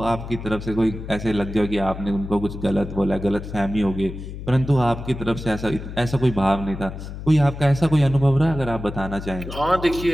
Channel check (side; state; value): left; noise; hum, 10 dB below the sound